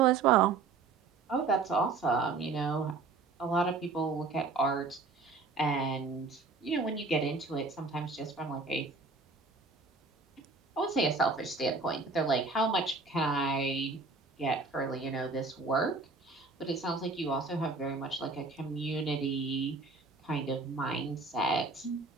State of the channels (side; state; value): left; quieter; 4.0 dB